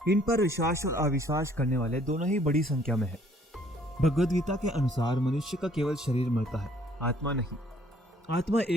इन पर विश्वास और अविश्वास करने वाले दोनों ही बड़ी संख्या में है। भगवद गीता के अनुसार मनुष्य का केवल शरीर मरता है, आत्मा नहीं। आत्मा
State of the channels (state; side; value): normal; both; correlation 0.61